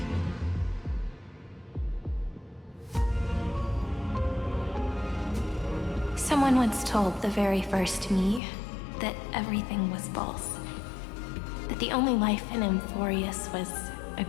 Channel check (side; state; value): right; drops out; at 8.4 s